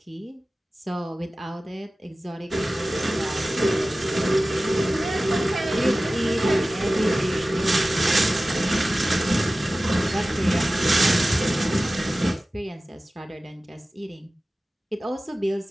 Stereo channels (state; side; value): normal; both; correlation 0.96